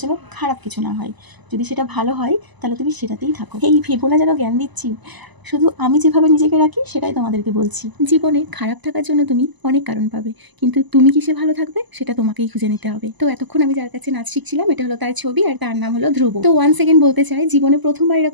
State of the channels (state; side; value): late; left; 1.0 ms